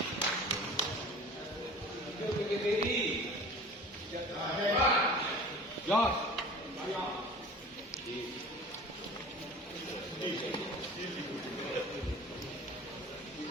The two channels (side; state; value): both; normal; correlation 0.41